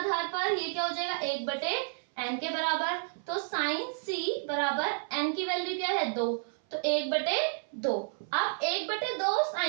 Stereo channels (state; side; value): silent; left; 57 dB below the other